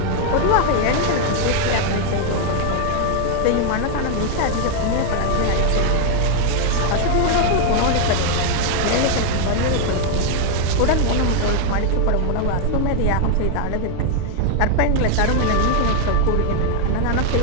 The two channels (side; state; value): both; different; correlation 0.00